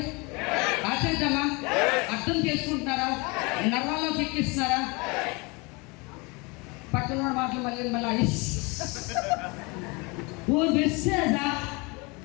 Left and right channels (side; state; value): right; quieter; 27.9 dB